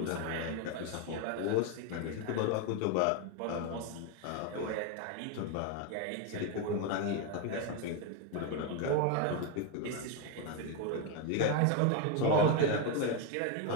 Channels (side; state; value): both; different; correlation 0.01